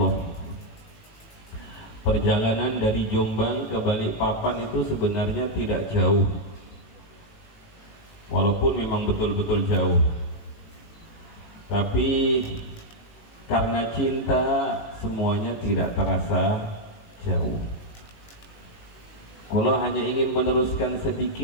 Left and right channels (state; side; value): late; right; 18 ms